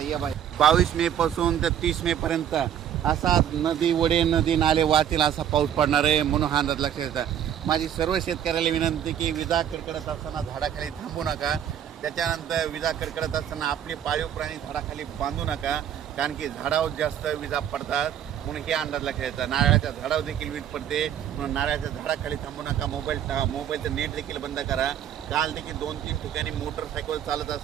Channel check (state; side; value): quieter; left; 9.8 dB